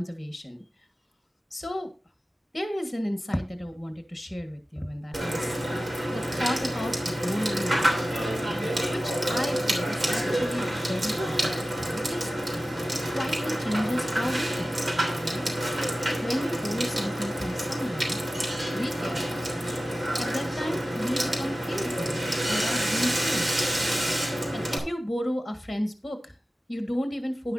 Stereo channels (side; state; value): both; normal; correlation 0.95